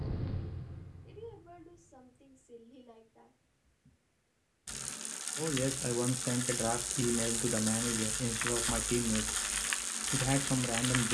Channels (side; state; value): both; identical; correlation 1.00